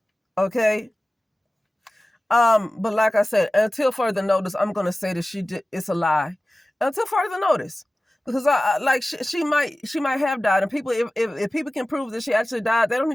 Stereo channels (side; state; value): both; normal; correlation 0.96